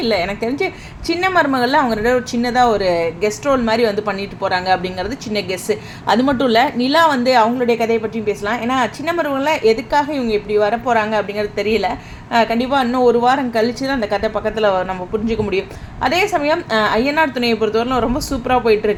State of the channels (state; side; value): identical; both; correlation 1.00